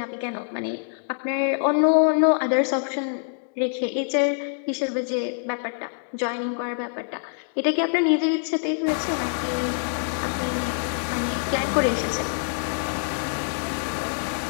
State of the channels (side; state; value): right; silent; digital silence